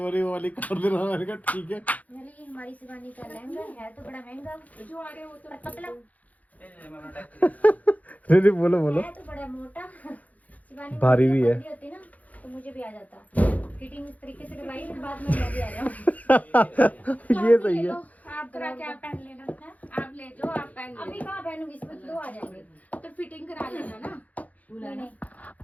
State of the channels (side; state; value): right; late; 0.075 ms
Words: वो वाली कर देना। मैंने कहा ठीक है। ये हमारी शिवानी का लहंगा है तो बड़ा महंगा, जो आ रहे हो तो पतला दीदी बोलो बोलो। है तो बड़ा मोटा। शिवानी भारी भी है। होती ना तो मुझे भी आ जाता। फिटिंग इस तरीके से करवाई फिर बाद में मैं भी आ जाऊँ। ये सही है। आप क्या पहन लेना है, आप ले जाओ, आप पहन अभी कहाँ पहनूंगी, इसमें तो 2 आ जाएंगे। तो फिटिंग करा लेना ना। नहीं